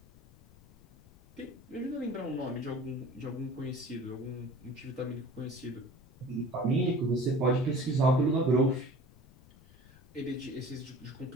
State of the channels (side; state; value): left; noise; rumble, 24 dB below the sound